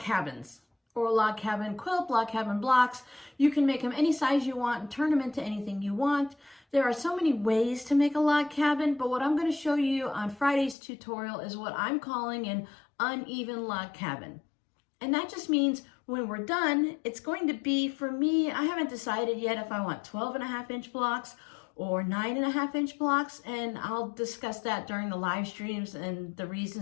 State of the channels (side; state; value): right; drops out; at 10.8 s